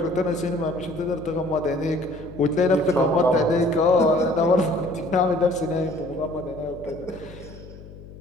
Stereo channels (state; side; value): noise; left; hum, 17 dB below the sound